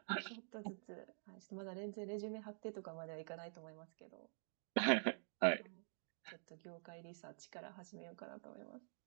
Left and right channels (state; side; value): silent; left; digital silence